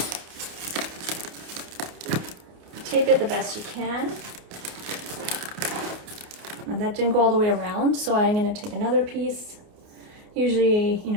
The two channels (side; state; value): left; late; 29 ms